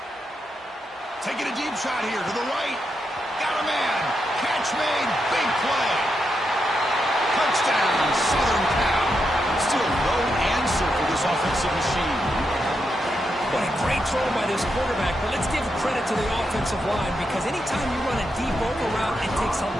Taking a deep shot here to the right. Got a man. Catch made. Big play. Touchdown, Southern Cal. Still no answer for this offensive machine. What a great throw by this quarterback, but let's give credit to the offensive line because anytime you run a deep over route, it takes a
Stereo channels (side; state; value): both; normal; correlation 0.84